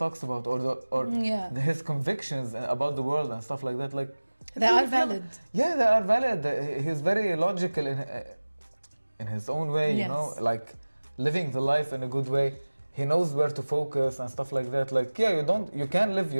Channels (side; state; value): both; inverted; correlation -1.00